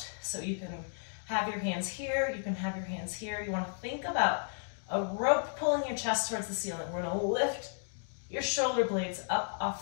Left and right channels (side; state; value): right; silent; digital silence